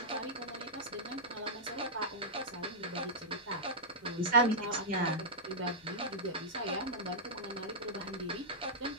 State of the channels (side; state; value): both; normal; correlation -0.11